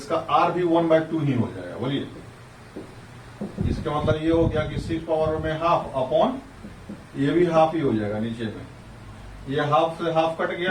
आर भी 1/2 ही हो जाएगा। बोलिए इसका मतलब ये हो गया कि 6 पावर में हाफ अपॉन ये भी हाफ ही हो जाएगा नीचे में, ये हाफ से हाफ कट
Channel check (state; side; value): identical; both; correlation 1.00